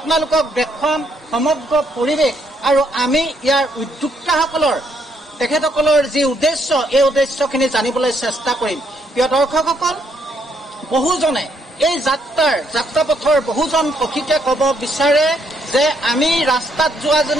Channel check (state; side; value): normal; both; correlation 0.72